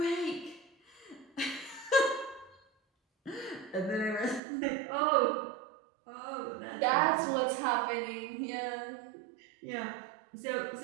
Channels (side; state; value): left; drops out; at 4.4 s